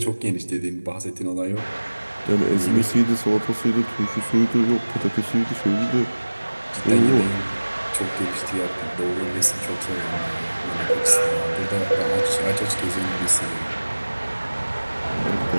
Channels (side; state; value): both; inverted; correlation -1.00